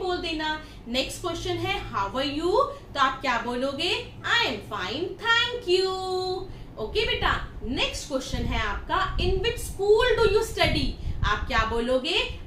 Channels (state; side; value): identical; both; correlation 1.00